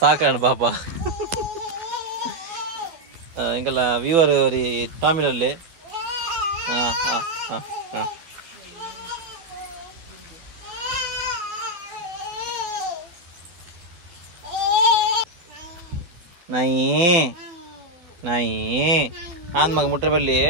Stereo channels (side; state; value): left; late; 12 ms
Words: ಸಾಕಾಣ ಪಾಪ ಎಂಕಲ್ಲ ವ್ಯೂವರ್ ಅವರಿ ಟಾಮಿಲಲ್ಲಿ ಹಾಂ ಹಾಂ ಹಾಂ ಹಾಂ ನಾಯಿ ನಾಯಿ ಆನ್ ಮಗ ಮುಟ್ರೆ ಬಲ್ಲಿ